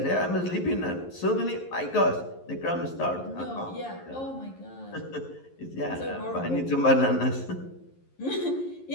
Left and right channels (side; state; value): right; late; 11 ms